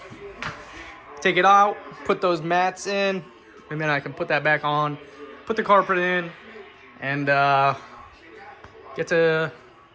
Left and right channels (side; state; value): both; identical; correlation 1.00